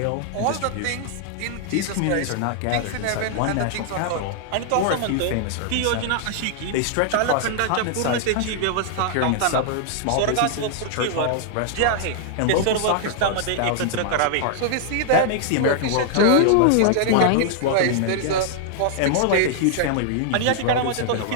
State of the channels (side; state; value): both; different; correlation 0.00